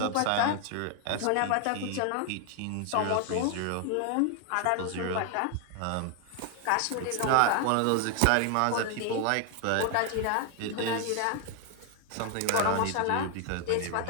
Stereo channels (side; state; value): both; different; correlation 0.00